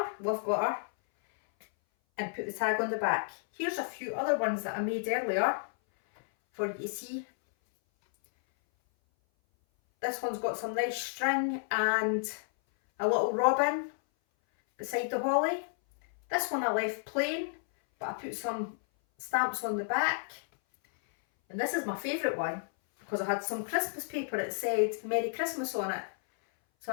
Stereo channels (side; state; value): right; silent; 57 dB below the other